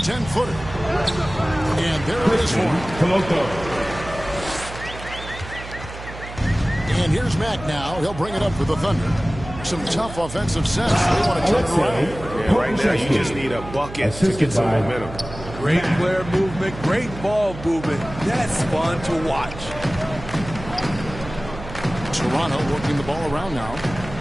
And there it is for him. And here's Mack now. He'll bring it up for the Thunder. Some tough offensive sets. They want to turn it around. Yeah, right now you just need a bucket to get some momentum. Great player movement, great ball movement. That's fun to watch. Toronto working the ball around now.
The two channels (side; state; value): right; noise; hum, 12 dB below the sound